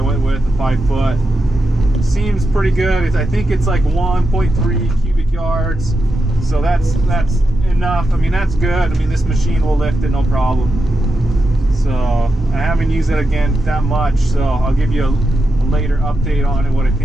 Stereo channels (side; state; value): both; normal; correlation 0.87